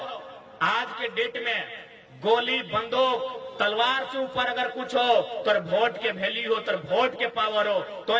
आज के डेट में गोली बंदूक तलवार से ऊपर अगर कुछ हो तो वोट के वैल्यू हो, तो वोट के पावर हो, तो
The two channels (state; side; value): identical; both; correlation 1.00